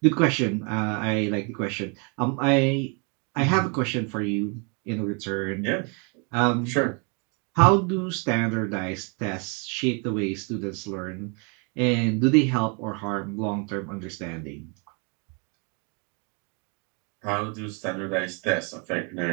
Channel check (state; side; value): quieter; left; 34.8 dB